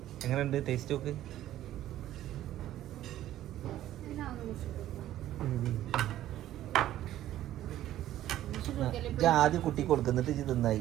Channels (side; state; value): left; quieter; 13.2 dB